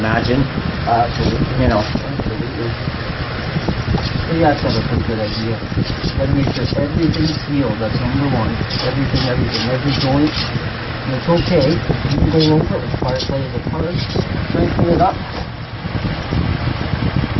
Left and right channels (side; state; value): both; identical; correlation 1.00